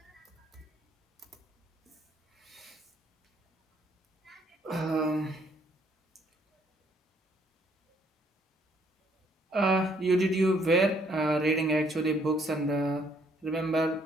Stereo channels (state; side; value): normal; both; correlation 0.66